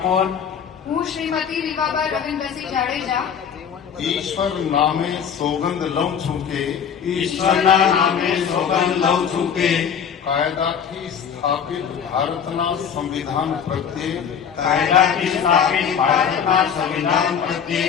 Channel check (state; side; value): quieter; right; 7.6 dB